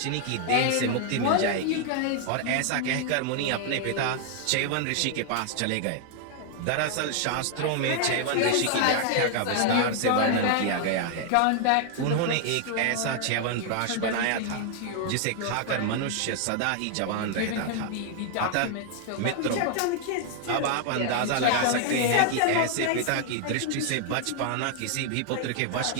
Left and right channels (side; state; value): both; different; correlation 0.00